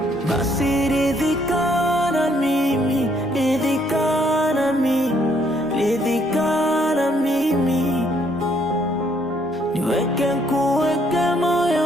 Basi ridhika na mimi, ridhika na mimi, ridhika na mimi, niweke kuweke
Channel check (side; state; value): both; normal; correlation 0.68